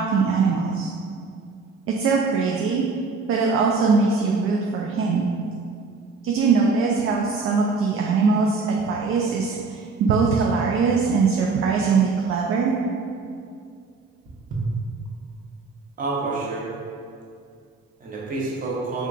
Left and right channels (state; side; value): quieter; left; 4.4 dB